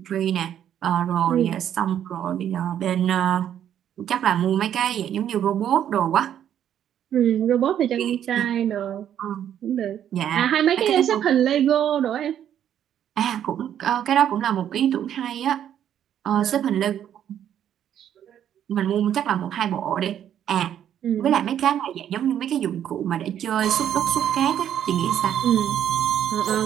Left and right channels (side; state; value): left; quieter; 10.1 dB